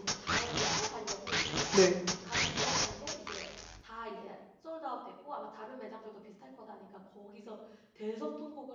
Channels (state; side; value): identical; both; correlation 1.00